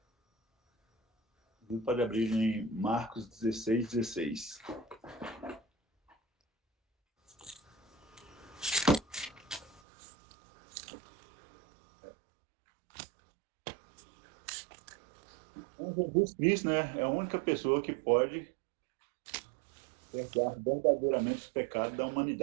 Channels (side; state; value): left; drops out; at 9.8 s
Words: pode abrir em Marcos 16, 16. Então, Jesus Cristo, né, é a única pessoa que pode perdoar verdadeiramente os pecados da